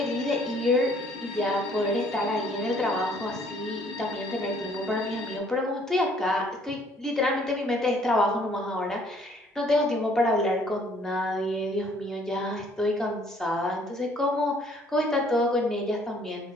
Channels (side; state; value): both; normal; correlation 0.61